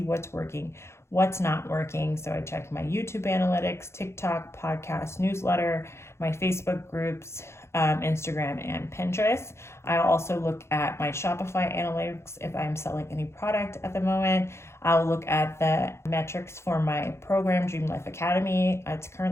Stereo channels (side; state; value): right; late; 0.13 ms